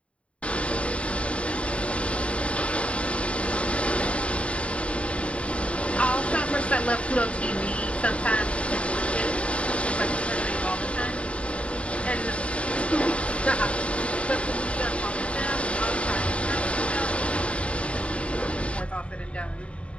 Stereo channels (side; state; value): right; late; 0.062 ms